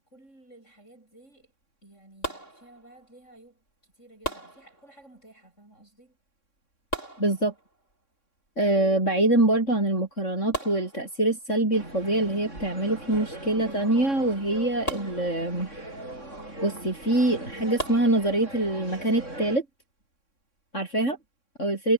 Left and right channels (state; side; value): late; right; 3.6 ms